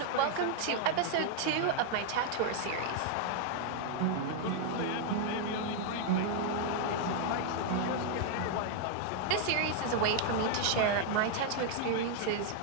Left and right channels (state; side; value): different; both; correlation 0.00